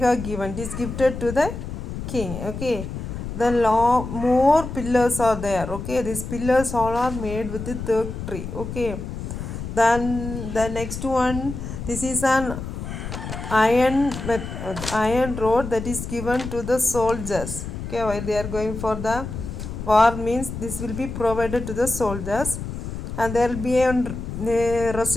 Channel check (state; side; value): noise; left; rumble, 7 dB below the sound